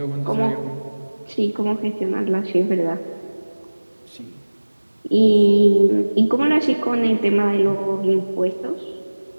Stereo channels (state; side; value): inverted; both; correlation -1.00